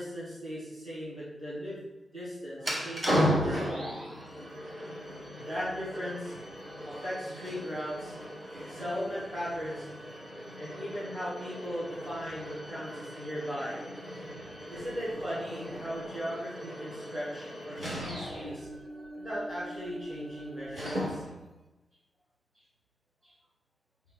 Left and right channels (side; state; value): both; normal; correlation 0.83